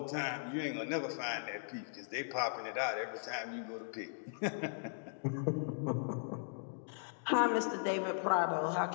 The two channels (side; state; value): right; silent; digital silence